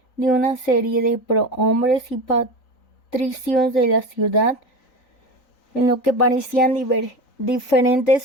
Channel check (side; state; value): right; late; 3.9 ms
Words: de una serie de prohombres y patricios de la ciudad, en lo que parecían